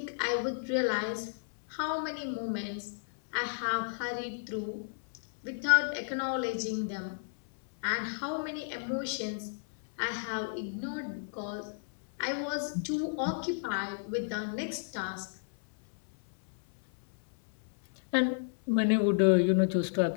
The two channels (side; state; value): right; silent; 56 dB below the other